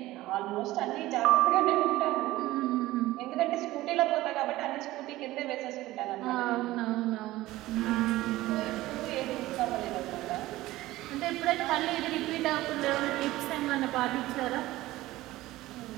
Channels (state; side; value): quieter; left; 17.2 dB